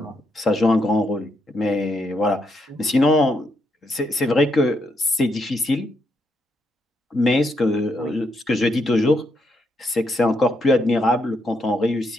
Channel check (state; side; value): normal; both; correlation 0.78